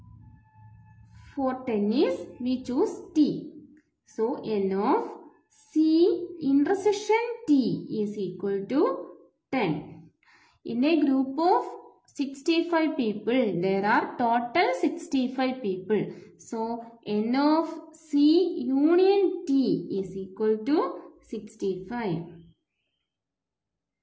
For tennis, we choose T. So, n of C intersection T is equal to 10. In a group of 65 people, there are total 65 people. So, n of C union T is equal to 65.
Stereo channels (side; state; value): both; identical; correlation 1.00